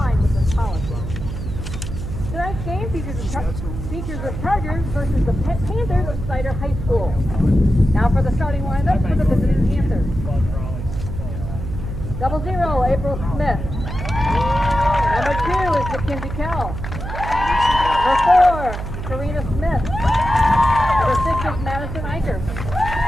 with this policy. Tonight's game features the Chargers versus the Panthers of Snider High School. Now for the starting lineup for the visiting Panthers. 00, April Smith. Number 2 is Mackenzie Carroll. Number 4, Karina Smith. Number 6 is Madison Eicher.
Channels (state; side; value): noise; right; hum, 6 dB below the sound